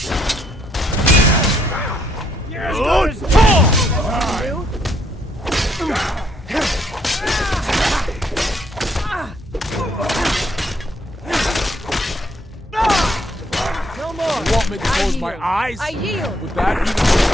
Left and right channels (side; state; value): both; normal; correlation 0.70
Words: No more! You want me to close my yield. eyes? I yield! Would